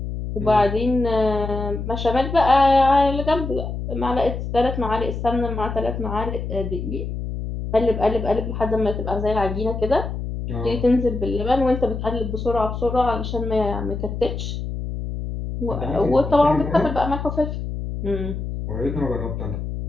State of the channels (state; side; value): noise; left; hum, 5 dB below the sound